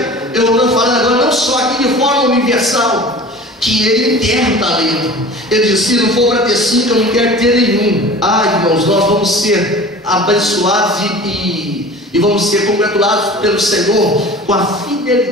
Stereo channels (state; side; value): normal; both; correlation 0.40